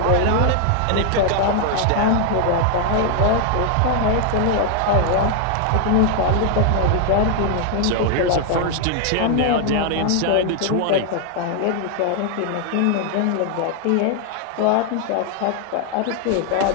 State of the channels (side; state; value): both; different; correlation 0.00